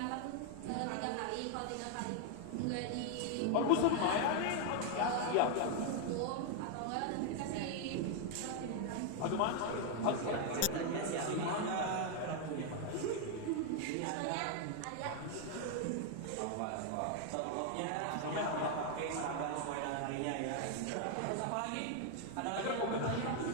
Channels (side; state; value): both; different; correlation 0.00